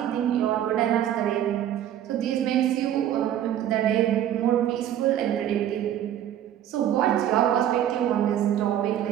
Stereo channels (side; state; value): left; quieter; 11.1 dB